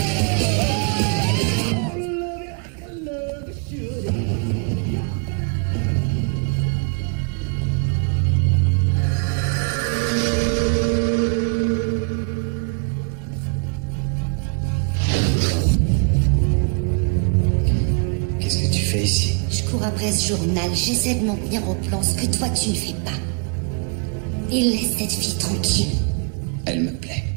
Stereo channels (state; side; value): quieter; left; 36.8 dB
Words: Qu'est-ce que tu fais ici? Je cours après ce journal, j'essaie de m'en tenir au plan, ce que toi tu ne fais pas. Et laisse cette fille tranquille. Elle me plaît.